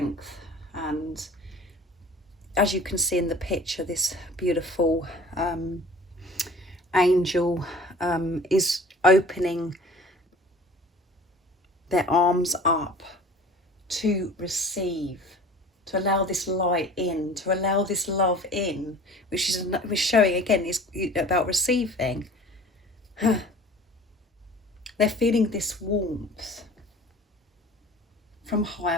And as you can see in the picture, this beautiful angel is opening their arms up to receive, to allow this light in, to allow this love in, which is showing again is about receiving. They're feeling this warmth from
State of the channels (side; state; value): both; normal; correlation 0.45